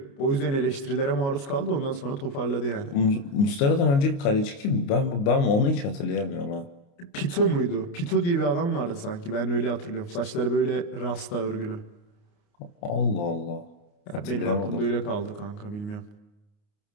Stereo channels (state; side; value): late; right; 29 ms